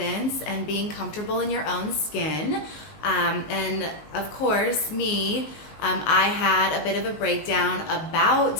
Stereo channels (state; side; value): late; right; 19 ms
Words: and being comfortable in your own skin. And of course, I had a bit of a breakdown